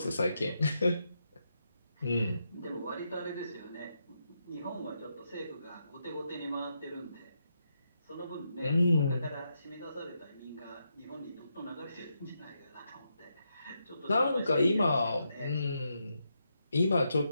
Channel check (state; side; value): inverted; both; correlation -0.83